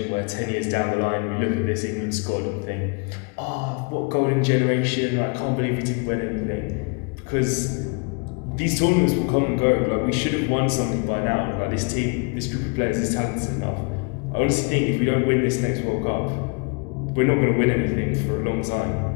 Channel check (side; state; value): right; quieter; 34.6 dB